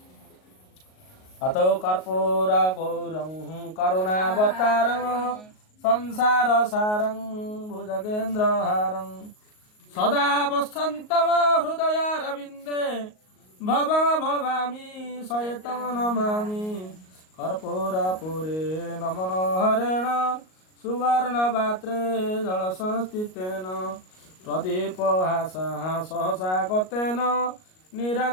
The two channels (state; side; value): late; right; 38 ms